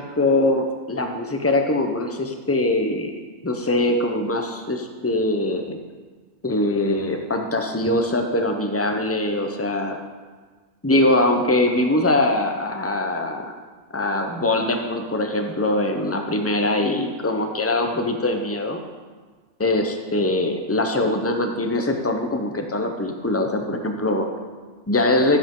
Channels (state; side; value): normal; both; correlation -0.05